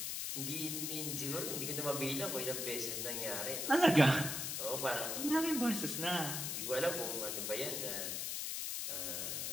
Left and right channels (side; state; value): left; noise; hiss, 2 dB below the sound